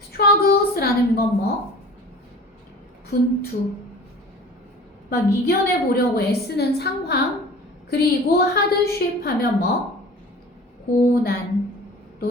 struggles라는 건 뭐? 분투 막 이겨내 보려고 애쓰는 상황 그리고 hardship 하면 뭐? 고난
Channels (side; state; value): both; normal; correlation 0.42